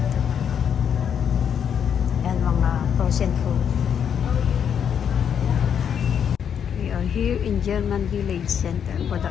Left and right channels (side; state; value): right; quieter; 8.1 dB